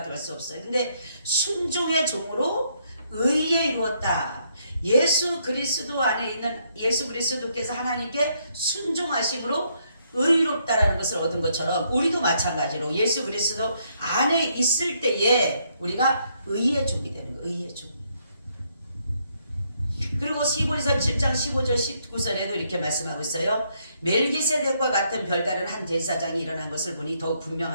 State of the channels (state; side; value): inverted; both; correlation -0.73